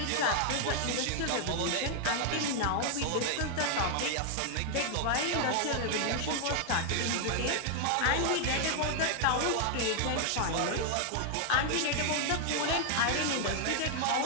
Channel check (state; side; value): different; both; correlation 0.00